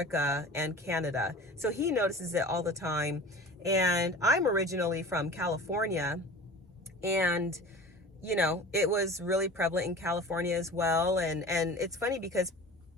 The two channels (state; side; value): normal; both; correlation 0.38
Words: and Canada. So he notices it all the time. And I'm originally from California, and you know, it was really prevalent in California as well. And it's funny because